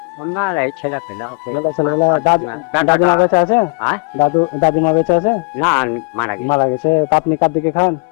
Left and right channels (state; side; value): quieter; right; 32.7 dB